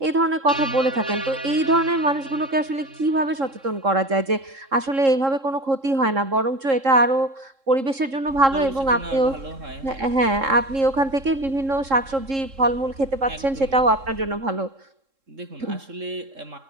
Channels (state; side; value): late; left; 3.7 ms